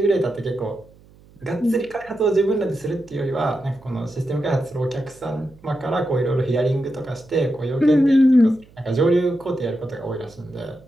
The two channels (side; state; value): right; noise; hum, 26 dB below the sound